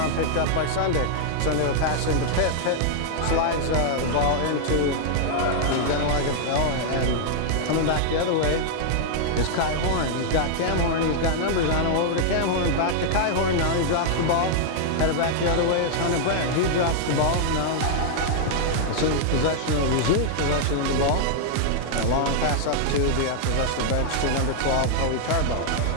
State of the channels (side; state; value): both; different; correlation -0.01